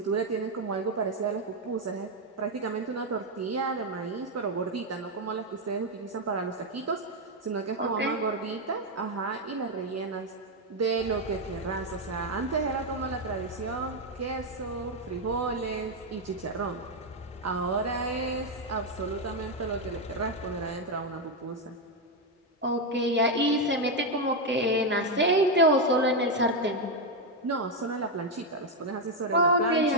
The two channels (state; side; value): normal; both; correlation 0.04